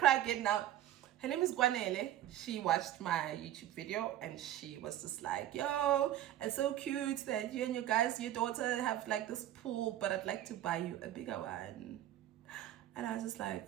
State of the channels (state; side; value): quieter; left; 12.7 dB